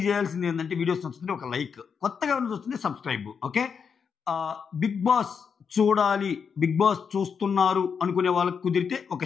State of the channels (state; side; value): quieter; right; 6.4 dB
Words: చేయాల్సింది ఏంటంటే, వీడియోస్ నచ్చుతుంటే ఒక లైక్, కొత్తగా చూస్తుంటే సబ్స్క్రైబ్. ఓకే, బిగ్ బాస్ చూడాలి, బిగ్ బాస్ చూస్తున్నారు అనుకునే వాళ్ళకి కుదిరితే